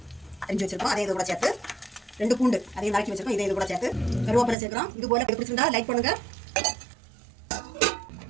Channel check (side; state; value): left; drops out; at 4.5 s